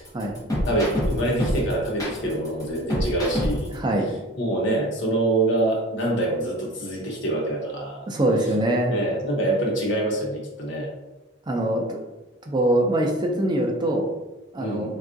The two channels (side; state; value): both; normal; correlation 0.41